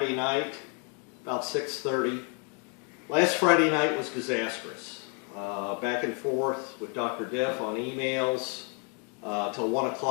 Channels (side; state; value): right; quieter; 38.1 dB